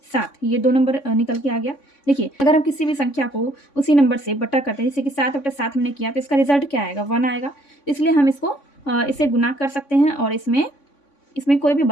7, ये 2 नंबर निकल के आ गया। देखिए अगर हम किसी भी संख्या को उसी नंबर से बटा करते हैं, जैसे कि 7 बटा 7 हमने किया, तो इसका रिजल्ट क्या आएगा, 1 आएगा। इसलिए हम इसको इसे गुना कर सकते हैं और इसमें कोई भी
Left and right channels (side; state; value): right; late; 3.5 ms